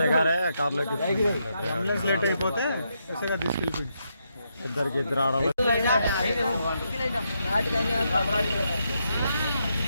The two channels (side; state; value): both; inverted; correlation -0.80